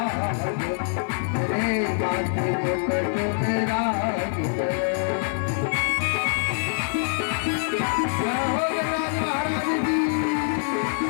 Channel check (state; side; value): silent; right; 62 dB below the other